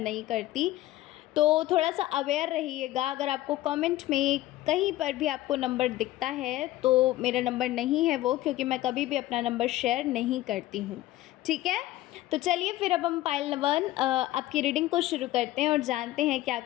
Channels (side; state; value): right; quieter; 15.9 dB